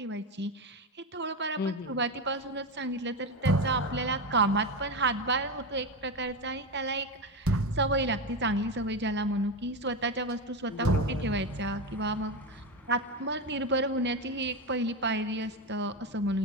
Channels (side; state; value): both; normal; correlation 0.15